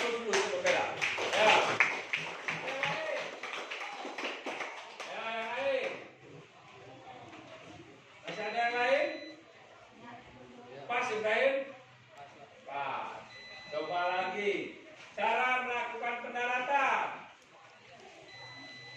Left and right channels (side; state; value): both; identical; correlation 1.00